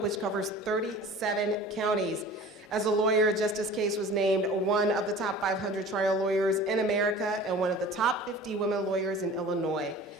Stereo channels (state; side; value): normal; both; correlation 0.42